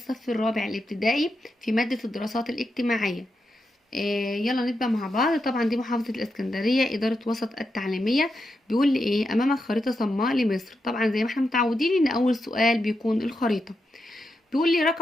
الرابع الابتدائي في مادة الدراسات الاجتماعية. يلا نبدأ مع بعض. طبعا دي محافظة الإسكندرية، إدارة وسط التعليمية. بيقول لي إيه؟ أمامك خريطة صماء لمصر. طبعا زي ما احنا متعودين إن أول سؤال بيكون الخريطة. بيقول لي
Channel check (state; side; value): normal; both; correlation 0.85